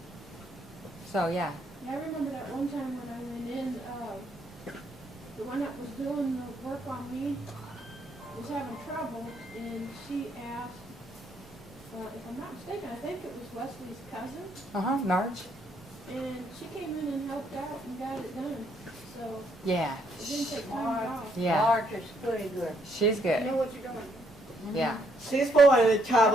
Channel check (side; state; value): both; normal; correlation 0.72